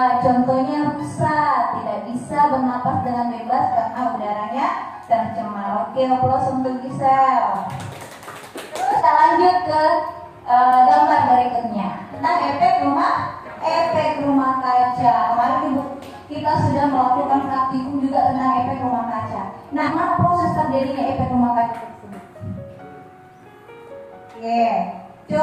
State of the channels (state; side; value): identical; both; correlation 1.00